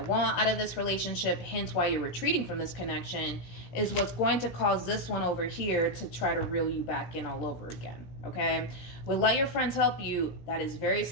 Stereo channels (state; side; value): late; right; 17 ms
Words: want out of this relationship, hence why you're retreating from this connection, is what's going to cause this one over here to try to reel you back in all over again, okay? With Let Your Friends Help You, that is very